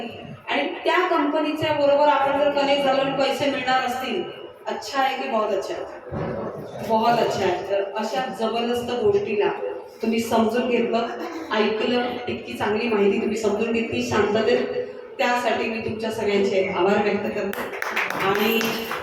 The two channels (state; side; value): identical; both; correlation 1.00